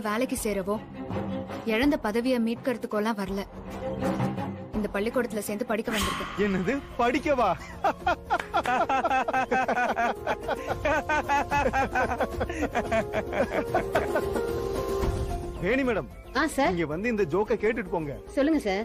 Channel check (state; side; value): identical; both; correlation 1.00